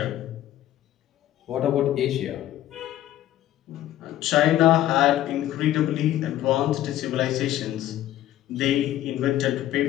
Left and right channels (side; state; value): right; quieter; 13.3 dB